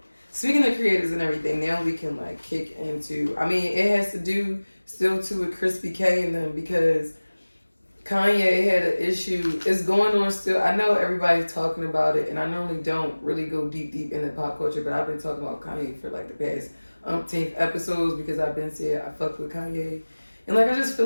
speaking of creators and everything, now we can like kick into. I mean, it has to do still too with Crispy K and them because Kanye had an issue. It's going on still. I know everybody's talking about it, and I normally don't really go deep into pop culture, but I've been talking about Kanye for like the past umpteenth episodes because I've been saying I fuck with Kanye. And like I just feel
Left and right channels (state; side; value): inverted; both; correlation -1.00